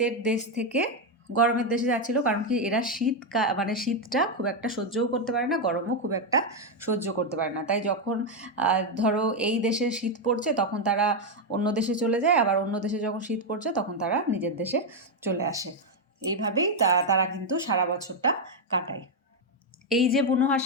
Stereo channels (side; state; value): both; normal; correlation 0.03